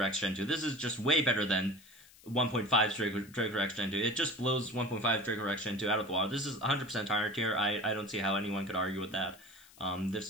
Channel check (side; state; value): left; noise; hiss, 24 dB below the sound